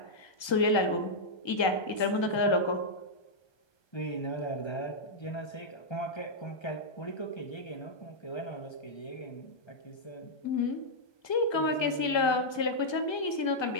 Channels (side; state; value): right; late; 1.3 ms